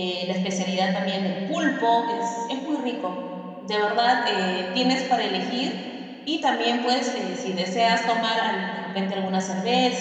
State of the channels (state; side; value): identical; both; correlation 1.00